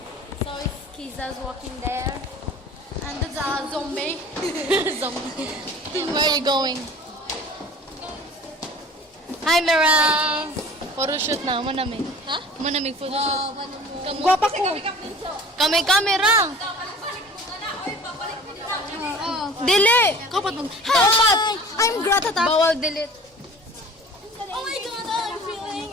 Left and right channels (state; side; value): normal; both; correlation 0.44